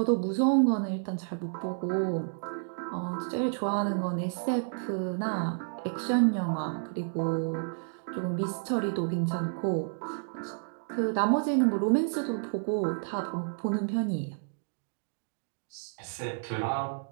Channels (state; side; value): silent; left; digital silence